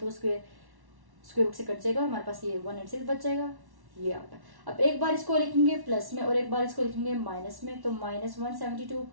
स्क्वायर रूट से कट जाएगा और हमारे पास ये 196 बच जाएगा, ये आ गया। अब एक बार इसको लिखेंगे प्लस में और एक बार इसको लिखेंगे माइनस में, तो -172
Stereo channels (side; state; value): left; late; 1.1 ms